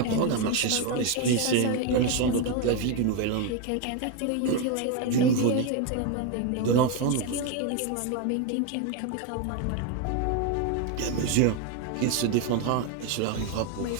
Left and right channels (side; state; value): both; different; correlation 0.02